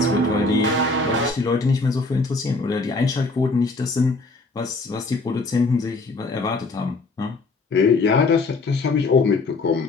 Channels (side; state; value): right; quieter; 3.4 dB